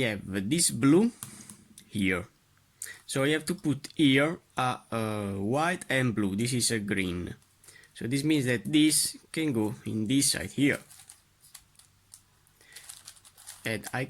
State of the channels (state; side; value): identical; both; correlation 1.00